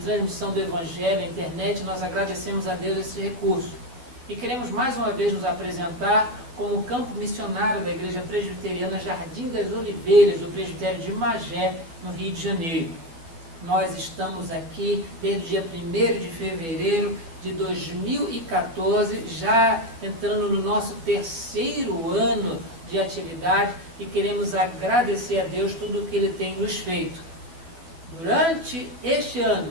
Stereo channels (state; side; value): late; left; 12 ms